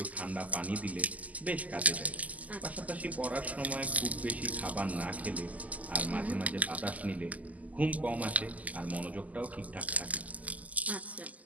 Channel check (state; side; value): late; left; 0.076 ms